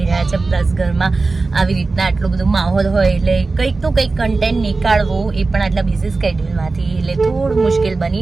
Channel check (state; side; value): quieter; left; 3.7 dB